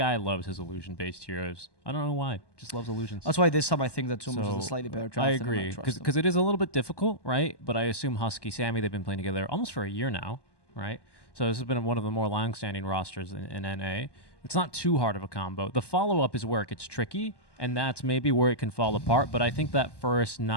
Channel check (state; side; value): late; right; 1.2 ms